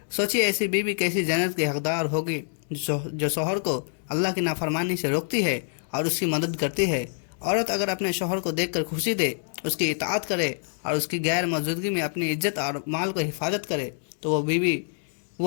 سوچیے ایسی بیوی کیسی جنت کی حقدار ہوگی جو شوہر کو اللہ کی نافرمانی سے روکتی ہے اور اس کی مدد کرتی ہے۔ عورت اگر اپنے شوہر کو دیکھ کر خوشی دے، اس کی اطاعت کرے اور اس کی غیر موجودگی میں اپنی عزت اور مال کو حفاظت کرے تو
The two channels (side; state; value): right; silent; digital silence